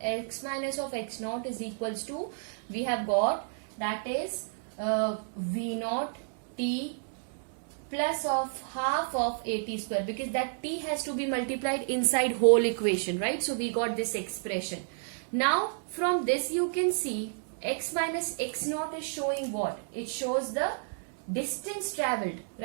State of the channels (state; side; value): silent; left; digital silence